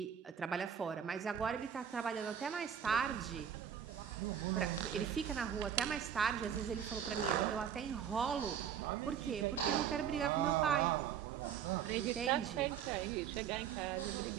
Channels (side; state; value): left; quieter; 8.5 dB